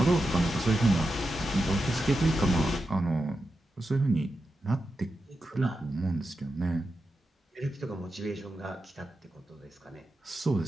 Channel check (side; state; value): both; normal; correlation 0.89